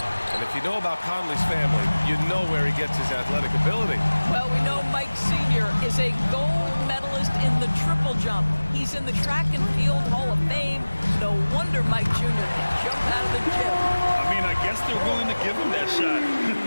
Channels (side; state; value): both; inverted; correlation -1.00